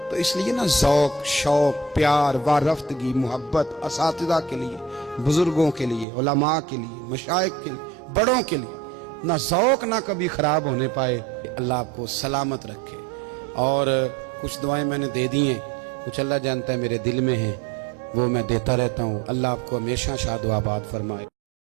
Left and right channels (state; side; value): drops out; left; at 6.1 s